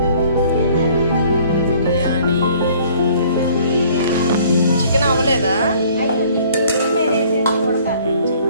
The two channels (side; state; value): both; inverted; correlation -0.56